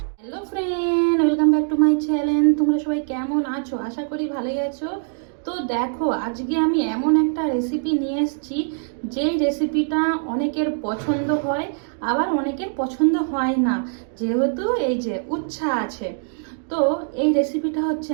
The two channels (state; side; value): silent; left; digital silence